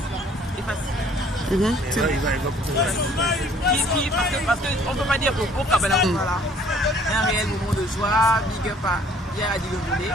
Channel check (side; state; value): both; normal; correlation 0.57